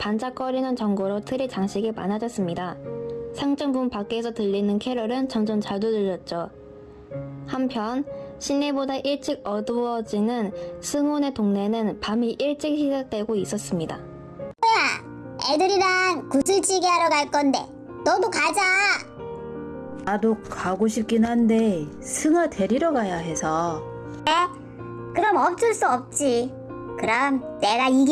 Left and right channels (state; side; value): identical; both; correlation 1.00